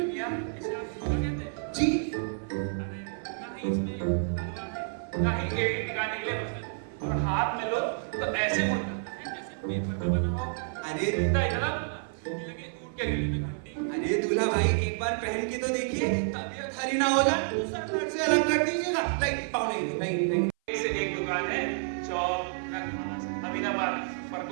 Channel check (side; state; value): left; silent; 58 dB below the other